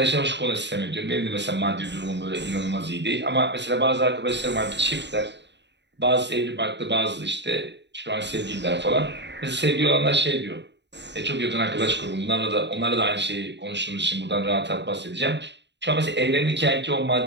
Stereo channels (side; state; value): left; late; 0.51 ms